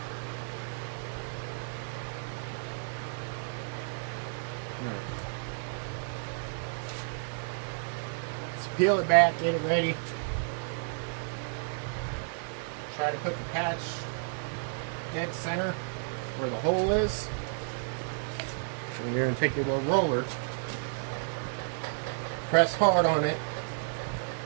Let's peel it back, get it ready. Try to put the patch dead center where the hole is. And you're going to take your little roller, press hard on it,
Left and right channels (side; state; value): left; silent; 57 dB below the other